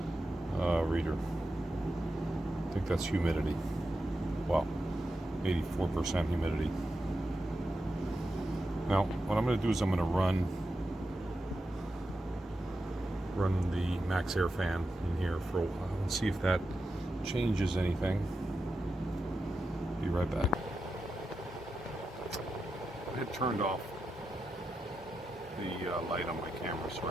reader. I think that's humidity. Wow, 84% humidity. Now, what I'm going to do is I'm going to run the max air fan in here for a while and see if that changes anything. Be right back. I had turned off the light on my camera so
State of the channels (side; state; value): both; normal; correlation 0.89